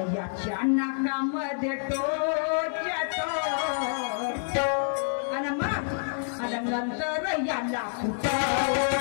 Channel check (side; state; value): right; silent; digital silence